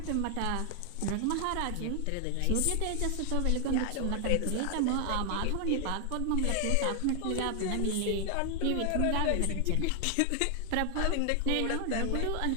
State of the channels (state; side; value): different; both; correlation 0.00